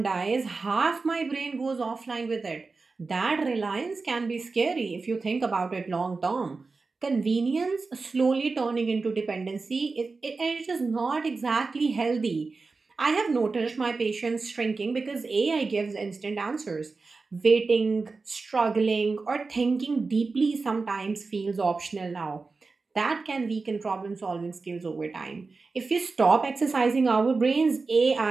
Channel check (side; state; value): left; quieter; 4.1 dB